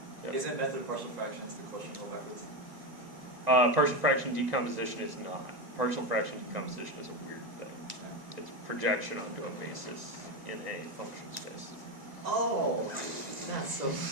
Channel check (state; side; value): late; left; 1.9 ms